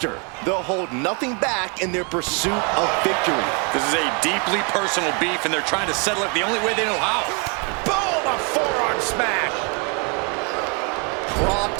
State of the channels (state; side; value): quieter; left; 34.7 dB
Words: They'll hold nothing back in their pursuit of victory. This is a deeply personal beef, and they're trying to settle it the only way they know how. Boom! A forearm smash.